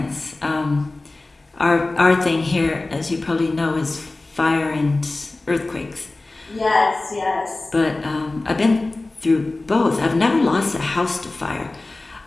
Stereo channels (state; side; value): quieter; right; 3.1 dB